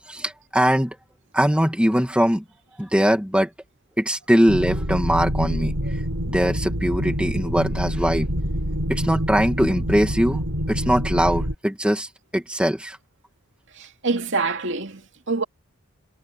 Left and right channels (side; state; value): both; normal; correlation 0.88